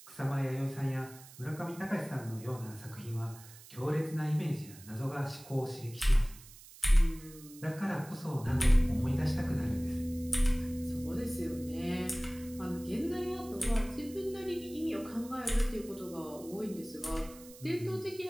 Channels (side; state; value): right; noise; hiss, 19 dB below the sound